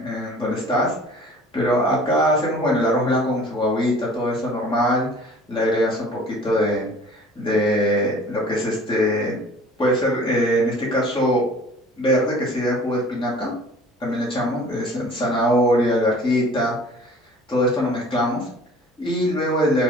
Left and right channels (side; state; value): both; normal; correlation 0.48